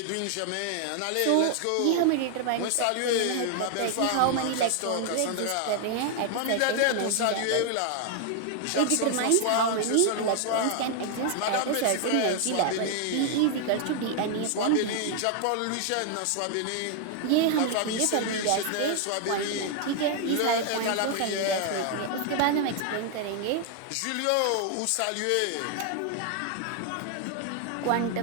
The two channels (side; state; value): both; different; correlation 0.00